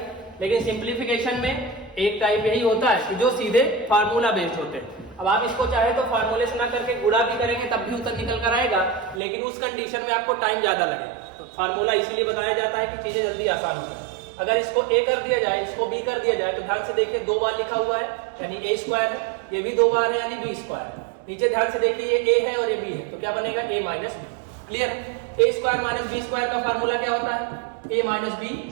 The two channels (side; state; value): left; drops out; at 9.2 s